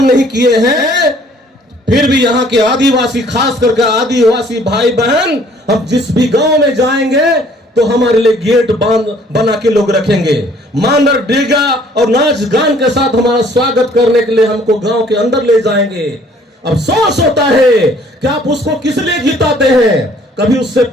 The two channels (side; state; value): both; normal; correlation 0.58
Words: नहीं किए हैं। फिर भी यहाँ के आदिवासी, खास करके आदिवासी भाई बहन, हम जिस भी गांव में जाएंगे तो हमारे लिए गेट बना के लोग रखेंगे। मानर डेगा और नाच गान के साथ हमारा स्वागत करने के लिए हमको गांव के अंदर ले जाएंगे। अफसोस होता है कि आप उसको किस लिए जिताते हैं? कभी उससे